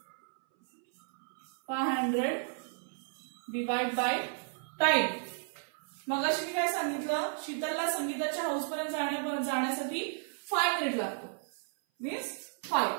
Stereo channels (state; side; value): silent; left; 56 dB below the other